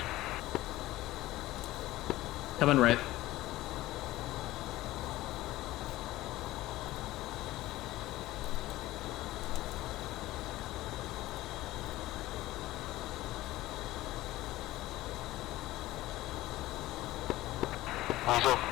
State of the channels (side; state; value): right; quieter; 16.9 dB